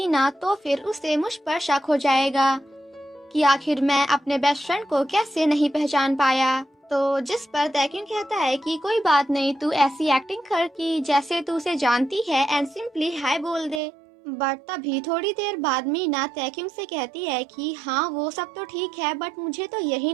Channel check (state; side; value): drops out; left; at 13.8 s